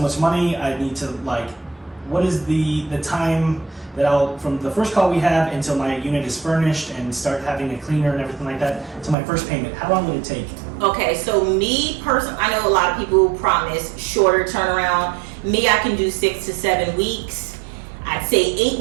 much money. I need to like, what is the time that from the first call we have until my unit is furnished and start having a cleaner and everything like that to my first payment? How long would it take? Okay, so me personally, I know a lot of people promise shorter turnaround. Me, I can do 6 to 7 weeks. I'd say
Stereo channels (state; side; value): drops out; left; at 9.2 s